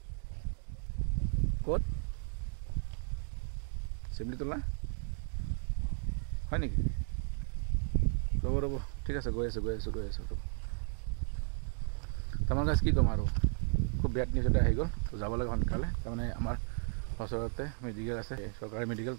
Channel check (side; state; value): left; silent; 55 dB below the other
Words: ক'ত চিমলিতলা হয় নেকি ৰ'ব ৰ'ব ঠিক আছে গৈ আছোঁ তাৰমানে গাইজ কি ক'ম আৰু খুব বেড নিউজ এটা আহি গ'ল তো যাব লাগে সোনকালে তাৰমানে আমাৰ ওচৰতে মেডিকেল আছে চৰকাৰী মেডিকেল